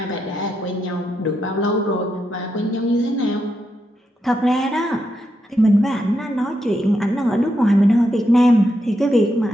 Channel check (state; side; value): normal; both; correlation 0.83